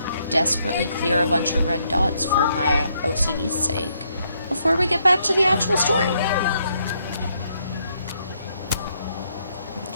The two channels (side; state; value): both; inverted; correlation -0.74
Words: desperately clear a bunch of red dots for my OCD's sake before we get back to the actual story.